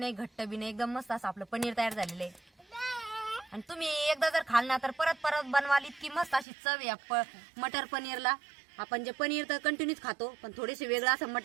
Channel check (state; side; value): drops out; left; at 6.5 s